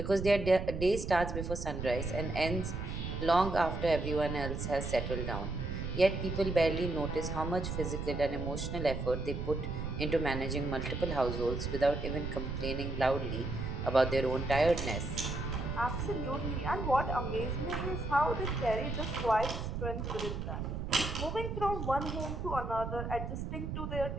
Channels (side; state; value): right; noise; rumble, 4 dB below the sound